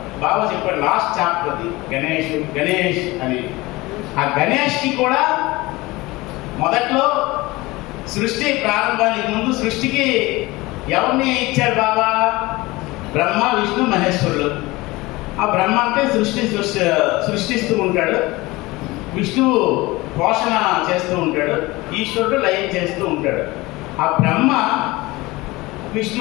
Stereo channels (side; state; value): right; quieter; 21.2 dB